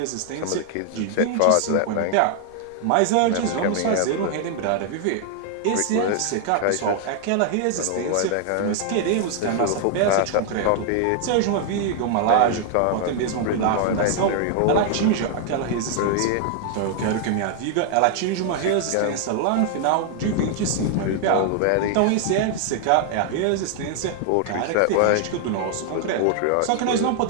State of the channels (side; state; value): both; different; correlation 0.00